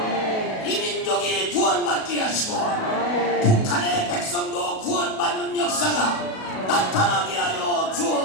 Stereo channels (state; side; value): late; right; 37 ms